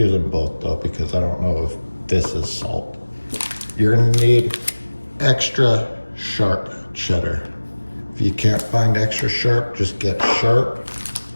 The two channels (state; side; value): inverted; both; correlation -1.00